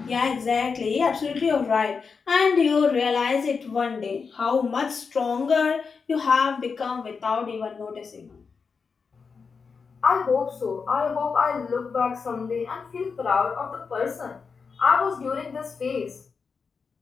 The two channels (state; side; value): quieter; right; 5.3 dB